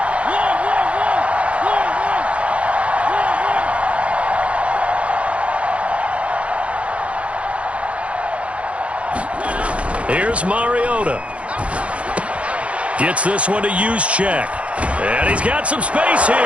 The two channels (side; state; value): left; late; 0.062 ms